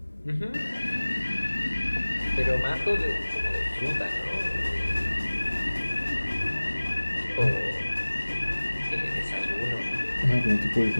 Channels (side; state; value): both; inverted; correlation -1.00